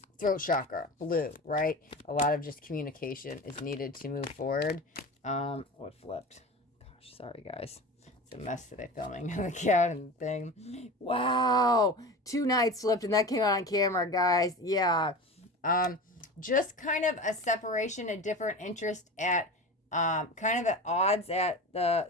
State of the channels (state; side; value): normal; both; correlation 0.31